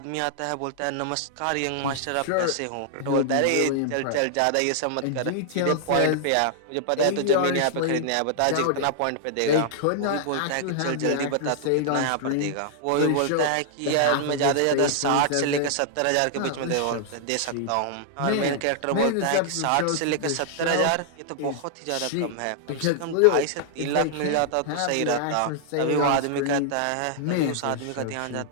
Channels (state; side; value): different; both; correlation -0.01